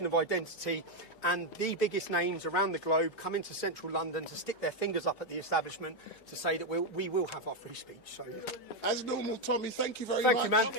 of identity, and the biggest names around the globe come into central London to stick their fingers up at the establishment to say that we will have our free speech. So, as normal, Tommy, thank you very much. Thank you, man.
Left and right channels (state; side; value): late; left; 2.3 ms